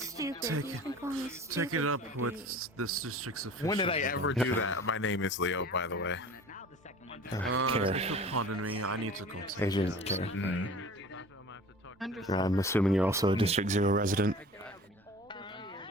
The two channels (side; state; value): both; normal; correlation 0.42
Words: Take He's been calling me stupid. Take it up with this district's official. When did I ever do that? My name is Leo, by the way. Care. If you'll pardon me, I need to go. Agent Care. Understood. I'm assuming you're also a District 0 resident.